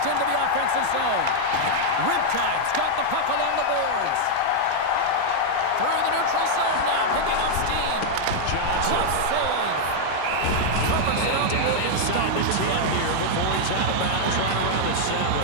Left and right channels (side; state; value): both; different; correlation -0.01